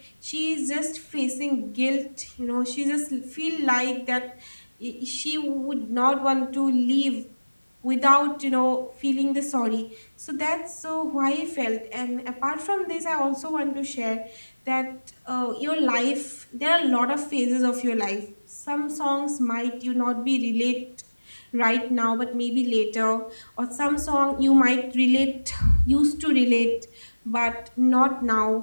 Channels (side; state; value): both; inverted; correlation -1.00